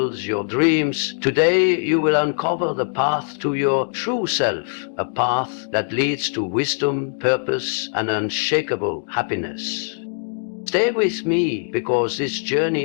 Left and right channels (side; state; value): right; silent; digital silence